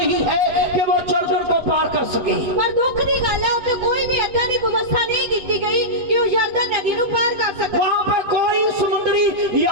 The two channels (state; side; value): late; left; 8.1 ms